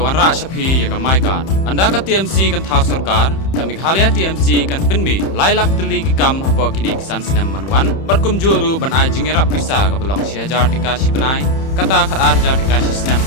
rak syapi ya kamai kan. Anda ka TMC kan thau sarkar, ka Meghalaya TMC kan penmi lailak teli ki kam apa kini kisan senem manuan, berkum juru ban ajing rap bisa ka belong si hajar dikasih benai, kata khat hajar dikasih senem,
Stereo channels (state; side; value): late; right; 31 ms